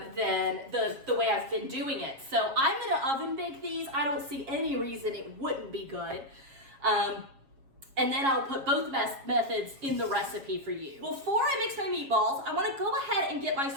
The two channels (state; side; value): late; left; 7.3 ms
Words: the way I've been doing it. So I'm gonna oven bake these. I don't see any reason it wouldn't be good. And then I'll put both methods in the recipe for you. Before I mix my meatballs, I wanna go ahead and get my